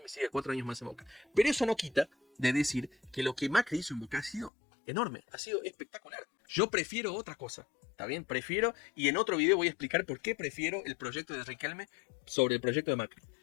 siga 4 años más en Boca. Pero eso no quita de decir que lo que Macri hizo en Boca ha sido enorme, ha sido espectacular. Yo prefiero otra cosa, ¿está bien? Prefiero, y en otro video voy a explicar por qué prefiero el proyecto de Riquelme sobre el proyecto de Macri.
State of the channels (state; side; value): drops out; right; at 4.5 s